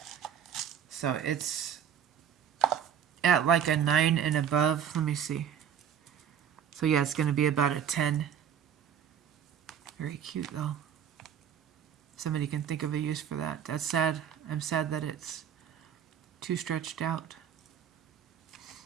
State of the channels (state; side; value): quieter; left; 8.7 dB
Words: So it's at like a 9 and above. Let me see. So yeah, it's going to be about a 10. Very cute though. Somebody can think of a use for that. That's sad. I'm sad that it's too stretched out.